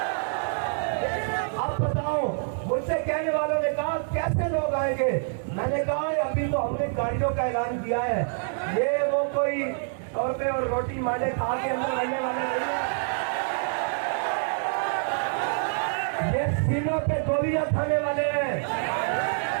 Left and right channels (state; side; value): silent; left; digital silence